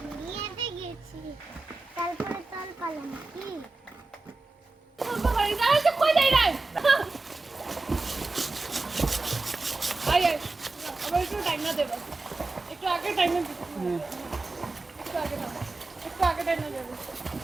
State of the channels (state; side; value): quieter; left; 3.4 dB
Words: বিয়েতে গেছি তারপরে তল পালাম কি একটু টাইম না দেবো একটু আগে টাইম না দেবো একটু আগে টাইম না দেবো